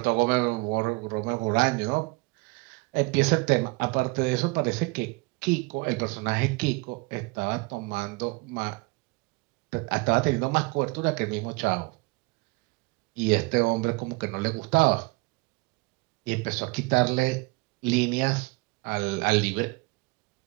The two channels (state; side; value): quieter; left; 26.3 dB